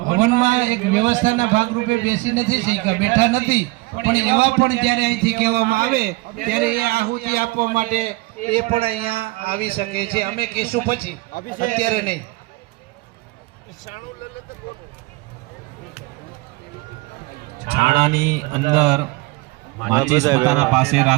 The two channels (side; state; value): left; quieter; 22.9 dB